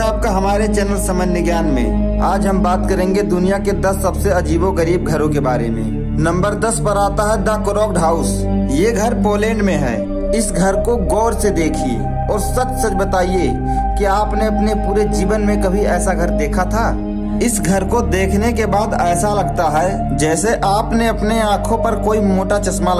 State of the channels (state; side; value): identical; both; correlation 1.00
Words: आपका हमारे चैनल सामान्य ज्ञान में। आज हम बात करेंगे दुनिया के 10 सबसे अजीबोगरीब घरों के बारे में। नंबर 10 पर आता है द क्रॉक्ड हाउस। ये घर पोलैंड में है। इस घर को गौर से देखिए और सच सच बताइए कि आपने अपने पूरे जीवन में कभी ऐसा घर देखा था। इस घर को देखने के बाद ऐसा लगता है जैसे आपने अपने आँखों पर कोई मोटा चश्मा